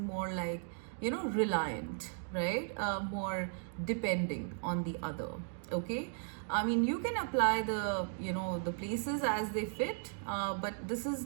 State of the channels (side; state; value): left; silent; 54 dB below the other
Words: like reliant, right? More depending on the other. Okay, I mean, you can apply the the places as they fit, but this